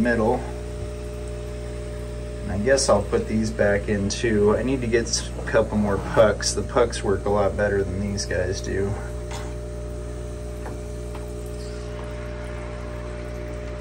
And I guess I'll put these back in too. I need to get a couple more pucks. The pucks work a lot better than these guys do.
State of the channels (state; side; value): identical; both; correlation 1.00